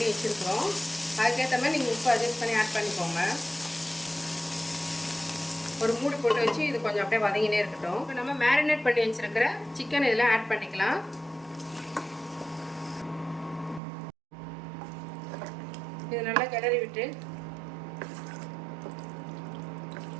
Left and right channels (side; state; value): left; drops out; at 13.8 s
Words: வச்சுருக்கிறோம். அதுக்கேற்ற மாதிரி நீங்கள் உப்பு அட்ஜஸ்ட் பண்ணி ஆட் பண்ணிக்கோங்க. ஒரு மூடி போட்டு வச்சு இது கொஞ்சம் அப்படியே வதங்கினே இருக்கட்டும். இப்போ நம்ம மேரினேட் பண்ணி வச்சுருக்கிற சிக்கன் இதில் ஆட் பண்ணிக்கலாம். இது நல்லா கிளறி விட்டு